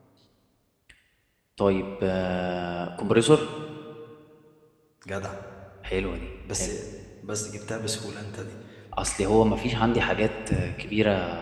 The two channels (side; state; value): both; identical; correlation 1.00